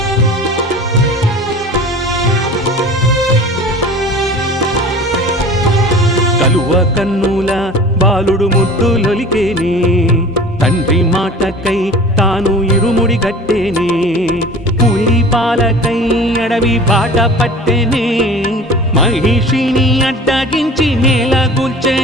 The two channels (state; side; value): normal; both; correlation 0.41